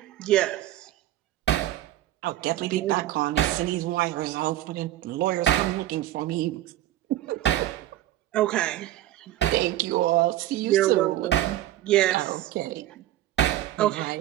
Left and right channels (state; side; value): quieter; left; 14.0 dB